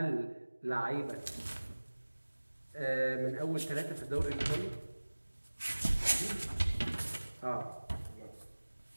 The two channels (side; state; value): both; inverted; correlation -1.00